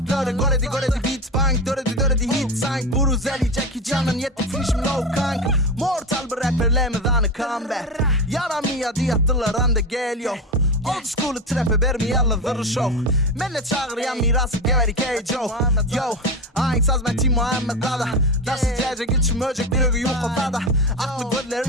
Göredi beat bank, döredi hit sank. Buruzeli Jackie Chan'ın yetti finishim low kank. Mortal bir rapperlemeden comeback. Yaramıyor diyattılar anda geliyor. Old school trap'e vermi alla zırr show. Menne çağırıyan mirası geveri K.J. Yo, aynı saz ben Tim Muhammed Dada. Nasıl cecek içim öcek bir ögü yok ortada. Aklı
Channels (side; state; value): both; normal; correlation 0.20